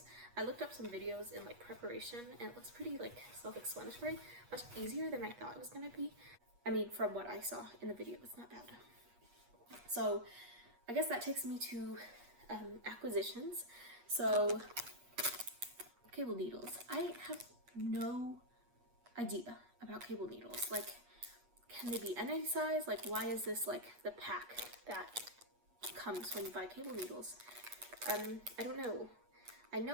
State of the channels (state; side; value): late; left; 8.3 ms